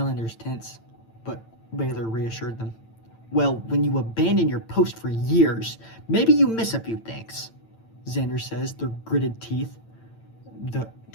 tense, but Baylor reassured them. Well, when you abandon your post for years, maybe you miss a few things, Xander says through gritted teeth,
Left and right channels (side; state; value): right; late; 8.9 ms